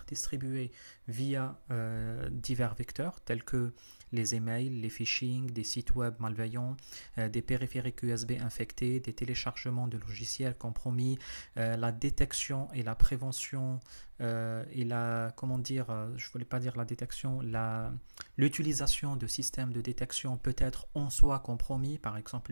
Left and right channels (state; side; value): inverted; both; correlation -1.00